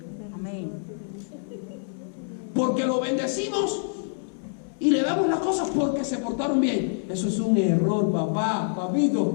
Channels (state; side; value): silent; right; 61 dB below the other